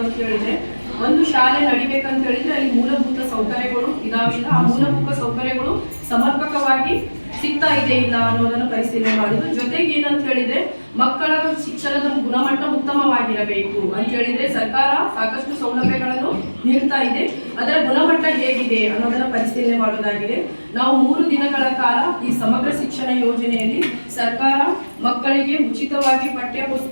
ಅಂತ ಹೇಳಿದ್ರೆ, ಒಂದು ಶಾಲೆ ನಡಿಬೇಕಂತ ಹೇಳಿದ್ರೆ ಅಲ್ಲಿ ಮೂಲಭೂತ ಸೌಕರ್ಯಗಳು ಇದಾವಿಲ್ಲ, ಆ ಮೂಲಭೂತ ಸೌಕರ್ಯಗಳು ಸಮರ್ಪಕವಾಗಿ ಸಿಗ್ತಾ ಇದೆ ಇಲ್ಲ ಅನ್ನೋದನ್ನು ಪರಿಶೀಲನೆ ಮಾಡುದು. ಜೊತೆಗೆ ಏನಂತ ಹೇಳಿದ್ರೆ ಮಕ್ಕಳ ಶಿಕ್ಷಣದ ಗುಣಮಟ್ಟ ಉತ್ತಮವಾಗಿರಬೇಕು ಅಂತ ಹೇಳಿದ್ರೆ ಸರ್ಕಾರ ಸಾಕಷ್ಟು ಸೌಲಭ್ಯಗಳನ್ನು ನೀಡ್ತಾ ಇದೆ, ಅದರ ಗುಣಮಟ್ಟ ಹೇಗಿದೆ ಅನ್ನೋದನ್ನ ಪರಿಶೀಲನೆ ಮಾಡೋದಾಗಿದೆ. ನಾವು 3 ದಿನಗಳ ಕಾಲ ಈ ಸಮಗ್ರ ಶಿಕ್ಷಣ ಯೋಜನೆಯಲ್ಲಿ ಸರ್ಕಾರ ಮಕ್ಕಳಿಗೆ ಉಚಿತವಾಗಿ ಪಠ್ಯ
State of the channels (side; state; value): both; inverted; correlation -1.00